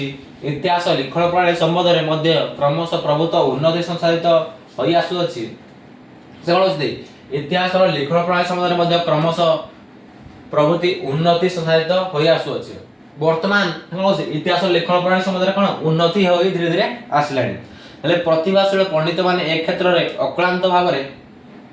इतिहास लिखण प्रणाली संबंध रे मध्य क्रमशः प्रभुत्व उन्नति संसाधित होई आसु अछि से कोनथि इतिहास रो लिखण प्रणाली संबंध रे मध्य क्रमशः प्रभुति उन्नति संसाधित होई आसु अछि वर्तमान इतिहास लेखन प्रणाली संबंध में कौन उन्नति हो धीरे धीरे आसलानी हेले प्रतिभाशील पंडित माने एक क्षेत्र रे अक्लांत भाव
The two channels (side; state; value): both; identical; correlation 1.00